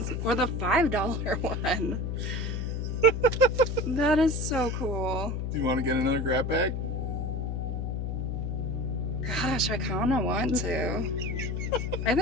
or the $5 one. That is so cool. Do you want to get another grab bag? Gosh, I kind of want to. I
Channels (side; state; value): left; noise; hum, 2 dB below the sound